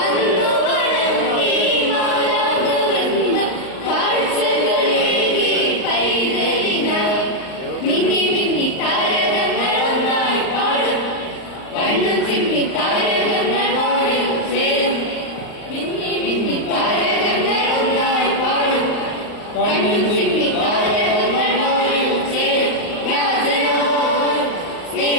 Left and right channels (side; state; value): right; late; 39 ms